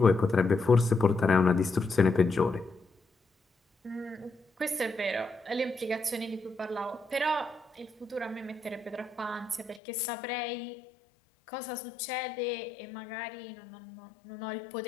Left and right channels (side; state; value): right; drops out; at 9.8 s